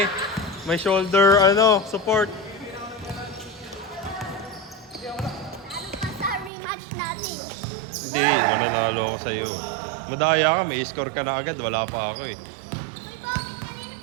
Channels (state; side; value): drops out; left; at 6.5 s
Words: may shoulder, support. Sa rematch natin. Hindi, mananalo ako sa'yo. Madaya ka, may score ka na agad, wala pa ako eh.